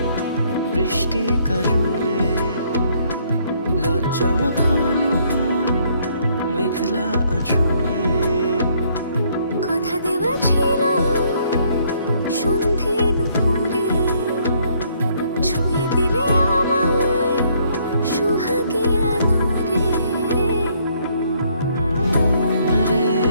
বৃষ্টি কাজলে লজ্জা মাখানো মেঘলা আঁচলে কথা দেওয়া ছিল সন্ধে নুপুরে ছুঁয়ে দিলে আমায় সোহাগী আদরে মন রে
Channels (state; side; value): inverted; both; correlation -0.67